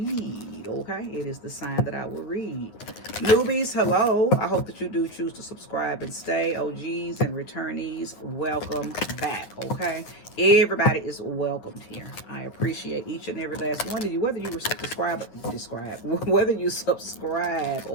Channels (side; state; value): right; late; 9.3 ms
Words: okay? It is the sign that I will read. Newbies, hello. I hope that you do choose to subscribe and stay. OGs and returnees, welcome back, okay? Everybody is welcomed here. I appreciate each and every last one of you, whether you subscribe whether you subscribe